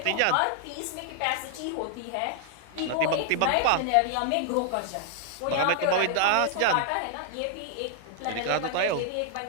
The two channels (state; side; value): different; both; correlation -0.01